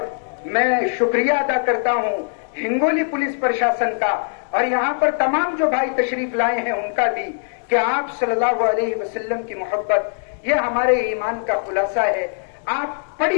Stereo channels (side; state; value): right; silent; digital silence